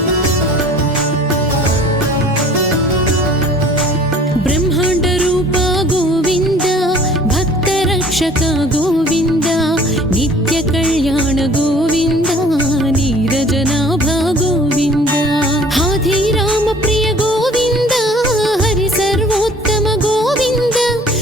బ్రహ్మాండ రూప గోవింద భక్త రక్షక గోవింద నిత్య కళ్యాణ గోవింద నీరజనాభ గోవింద హాధిరామ ప్రియ గోవింద హరి సర్వోత్తమ గోవింద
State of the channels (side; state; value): both; normal; correlation 0.50